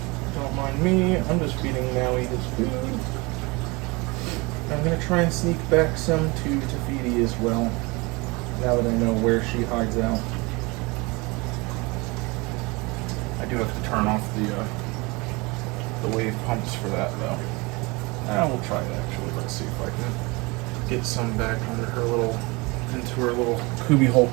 Don't mind me, I'm just feeding Maui his food. I'm going to try and sneak back some to Tafiti as well, now that I know where she hides out. I do have to turn off the wave pumps for that, though. We'll try it, actually. Let's see if I can get some back into her little cubbyhole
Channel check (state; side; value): quieter; left; 25.7 dB